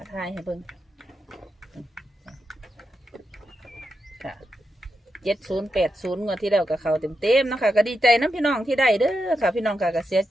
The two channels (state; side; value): normal; both; correlation 0.85